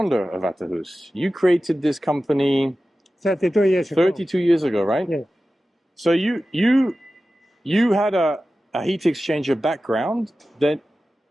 of Vahterus. You created this company 32 years ago. 32 years ago, right? Yeah. So you had a heat exchanger background that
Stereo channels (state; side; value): normal; both; correlation 0.94